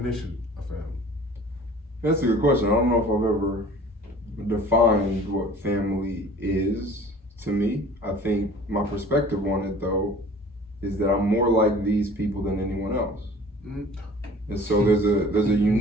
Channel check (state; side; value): normal; both; correlation 0.46